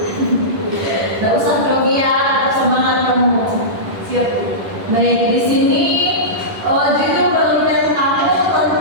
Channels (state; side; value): late; left; 10 ms